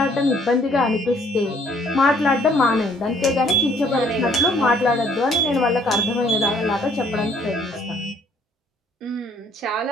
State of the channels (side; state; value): both; normal; correlation 0.62